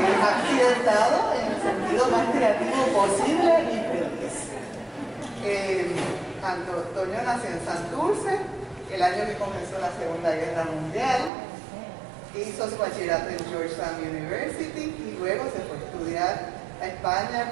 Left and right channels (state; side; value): drops out; left; at 11.3 s